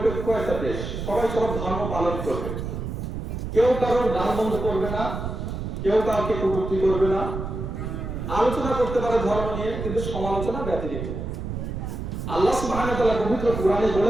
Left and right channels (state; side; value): noise; right; rumble, 5 dB below the sound